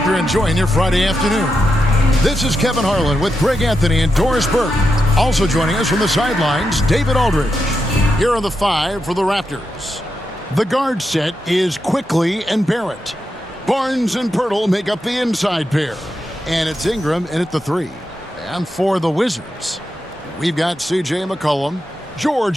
you're enjoying your Friday afternoon. This is Kevin Harlan with Greg Anthony and Doris Burke. Also joining us from the sidelines, David Aldridge. Here are the five for the Raptors. The guard set is Quickley and Barrett. Barnes and Pöltl make up the inside pair. And it's Ingram in at the three. And for the Wizards, we've got C.J. McCollum.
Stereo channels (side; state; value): both; normal; correlation 0.87